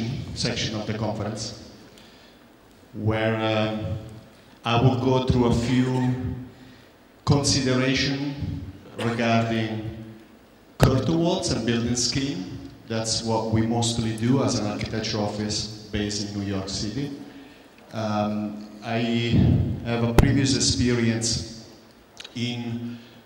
section of the conference, where I will go through a few considerations regarding curtain walls and building scheme. That's what we mostly do as an architecture office based in New York City. I have a previous experience in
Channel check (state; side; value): identical; both; correlation 1.00